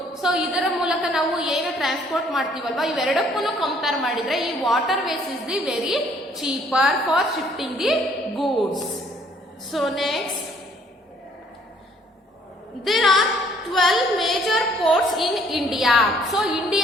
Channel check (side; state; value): both; normal; correlation 0.62